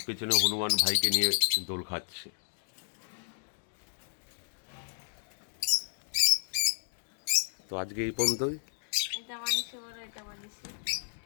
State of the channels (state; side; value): silent; right; digital silence